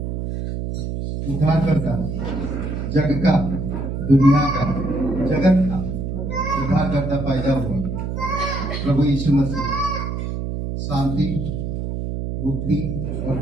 उद्धारकर्ता, जग का, दुनिया का, जगत का उद्धारकर्ता पैदा हुआ प्रभु यीशु मसीह शांति, मुक्ति और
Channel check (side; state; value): right; noise; hum, 4 dB below the sound